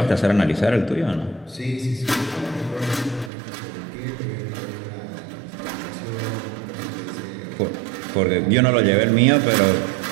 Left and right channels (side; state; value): left; drops out; at 3.3 s